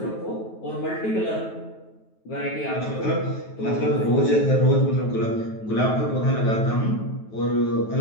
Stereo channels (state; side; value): late; right; 9.3 ms